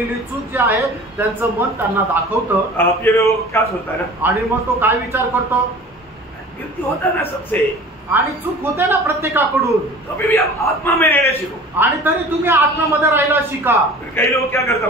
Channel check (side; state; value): both; normal; correlation 0.42